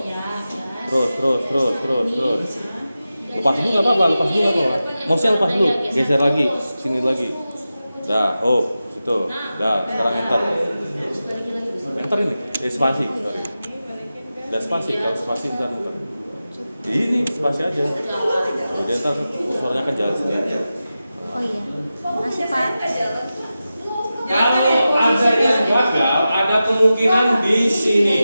Terus. Lepas dulu nggak apa-apa, Mouse-nya lepas dulu, geser lagi, sini lagi. Dah, situ. Dah, sekarang enter. Enter ini, spasi, sorry. Dah spasi, kalau spasi bentar. Ini spasi aja. Jadi ntar kursornya kan jalan sendiri. Oh iya. Makasih Pak. Kalau ada yang gagal, ada kemungkinan di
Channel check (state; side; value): inverted; both; correlation -0.93